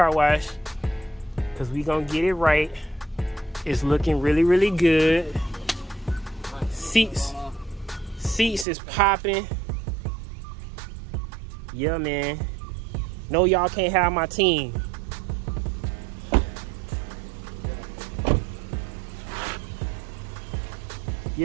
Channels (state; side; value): drops out; left; at 8.7 s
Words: because we gonna get it right. It's looking really, really good. Seats is popping. Yeah, man. No, y'all can't have my team.